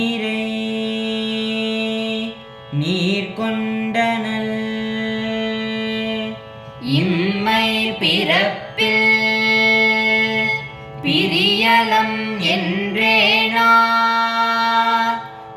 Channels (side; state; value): both; identical; correlation 1.00